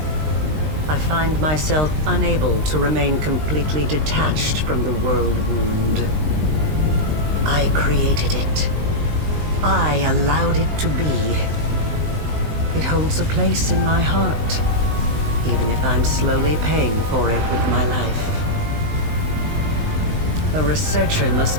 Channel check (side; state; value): left; late; 20 ms